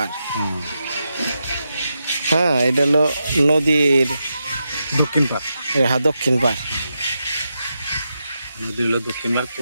হ্যাঁ, এটা হলো নদীর দক্ষিণ পাড়। হ্যাঁ, দক্ষিণ পাড়। নদী হলো দক্ষিণ পাড়,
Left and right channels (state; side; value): inverted; both; correlation -0.87